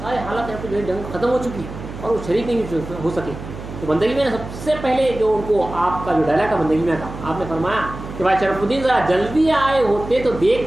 سارے حالات یہاں پہ جو ہے جنگ ختم ہو چکی اور وہ شریک نہیں ہو سکے، تو بندگی میاں نے سب سے پہلے جو ان کو آپ کا جو ڈائلاگ تھا بندگی میاں کا، آپ نے فرمایا کہ بھائی شرف الدین ذرا جلدی آئے ہوتے تو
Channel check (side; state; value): right; noise; hum, 11 dB below the sound